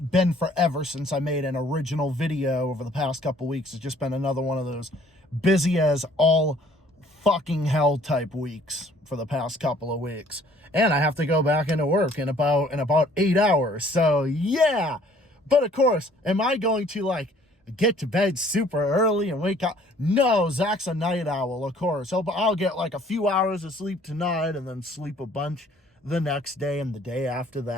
forever since I made an original video over the past couple weeks. It's just been another one of those busy as all fucking hell type weeks for the past couple of weeks. And I have to go back into work in about 8 hours. So yeah. But of course, am I going to get to bed super early and wake up? No, Zach's a night owl, of course. I'll get like a few hours of sleep tonight and then sleep a bunch the next day and the day after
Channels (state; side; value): normal; both; correlation 0.57